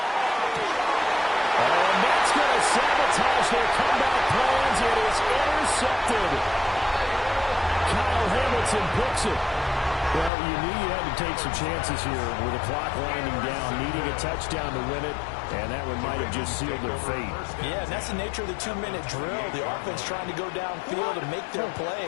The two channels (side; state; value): right; drops out; at 10.3 s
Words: And that's going to sabotage their comeback plans. It is intercepted. Kyle Hamilton picks it. Well, you knew you had to take some chances here with the clock winding down, needing a touchdown to win it, and that one might have just sealed their fate. Yeah, and that's the nature of the 2-minute drill. The offense trying to go downfield and make their